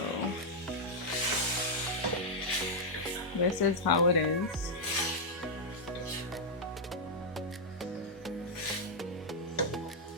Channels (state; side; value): normal; both; correlation -0.04